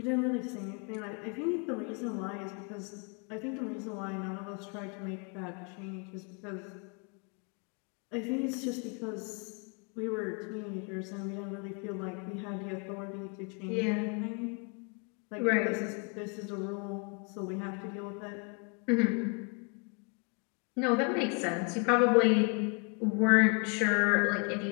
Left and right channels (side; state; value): right; quieter; 35.2 dB